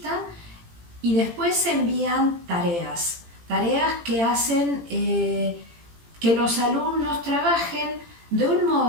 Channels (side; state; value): left; late; 18 ms